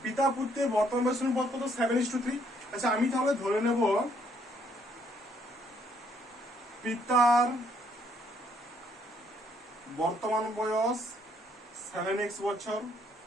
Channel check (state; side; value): normal; both; correlation 0.68